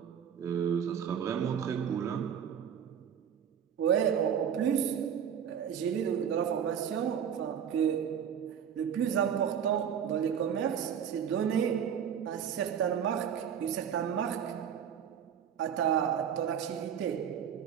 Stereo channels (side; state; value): left; quieter; 8.2 dB